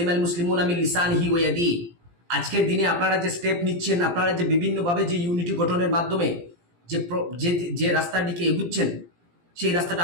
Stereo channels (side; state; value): left; late; 17 ms